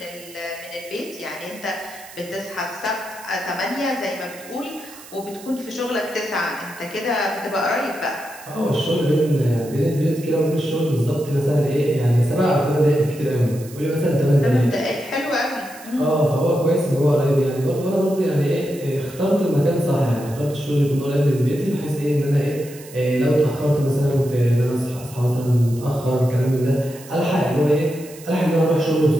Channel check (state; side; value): noise; right; hiss, 19 dB below the sound